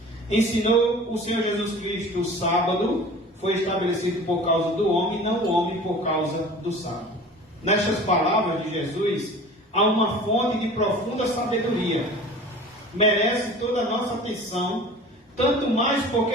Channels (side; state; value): both; normal; correlation 0.41